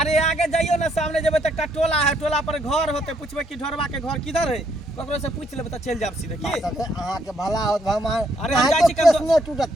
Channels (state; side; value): normal; both; correlation 0.72